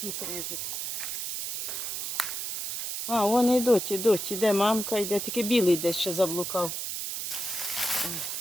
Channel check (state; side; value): noise; right; hiss, 4 dB below the sound